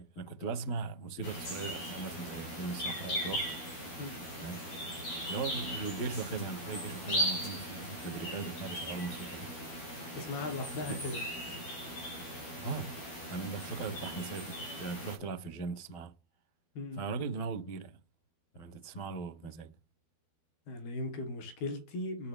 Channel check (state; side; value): late; right; 12 ms